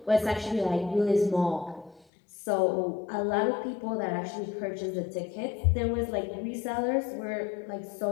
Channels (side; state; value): right; drops out; at 2.1 s